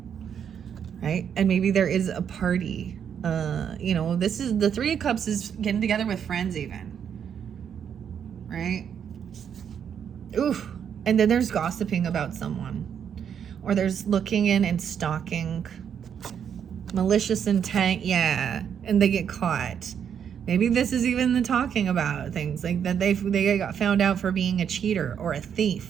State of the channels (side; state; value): left; quieter; 8.1 dB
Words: right? And maybe there is a party. You know, this is the Three of Cups is getting together with friends even, right? Oof. And then there's gossiping about someone, or there's looking in and stalking, malicious intent, yeah, and they get caught. Maybe this is even the talking about things like that they got found out for being a cheater or a thief